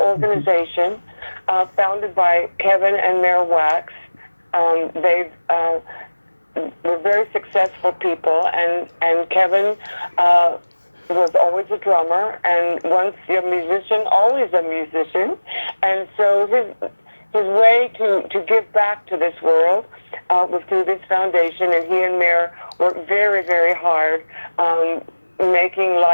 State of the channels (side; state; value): both; inverted; correlation -1.00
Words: founded by Kevin and Mayor Wax. They've were very successful people, and Kevin was always a drummer, and once a musician, always a musician, and so his way to give back to this world was through this foundation, and he and Mayor worked very, very hard making